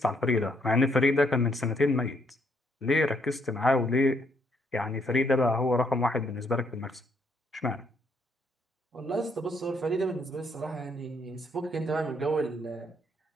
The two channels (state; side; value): normal; both; correlation 0.72